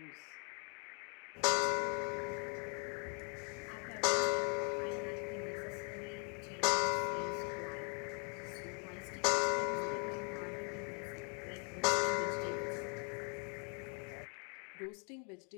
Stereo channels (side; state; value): right; quieter; 38.1 dB